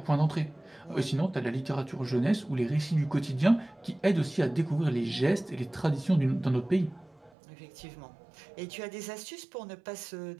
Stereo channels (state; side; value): drops out; left; at 7.3 s